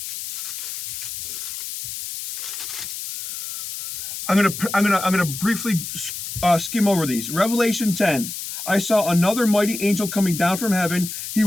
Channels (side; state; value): left; noise; hiss, 7 dB below the sound